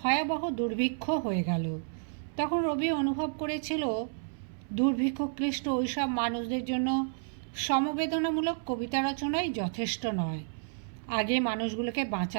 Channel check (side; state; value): left; silent; 57 dB below the other